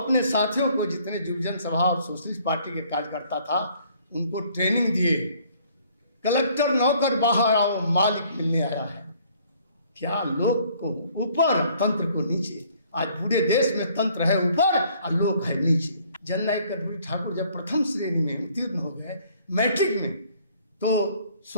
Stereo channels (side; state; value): both; inverted; correlation -0.60